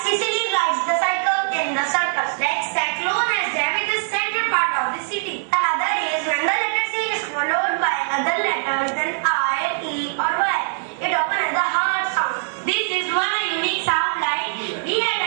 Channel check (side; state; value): left; silent; digital silence